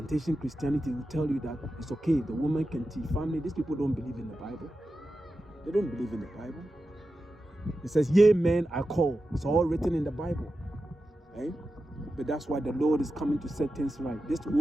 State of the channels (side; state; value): both; normal; correlation 0.92